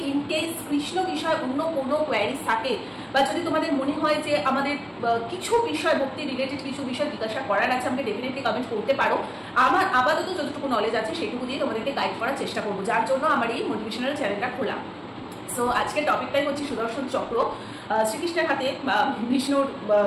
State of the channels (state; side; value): identical; both; correlation 1.00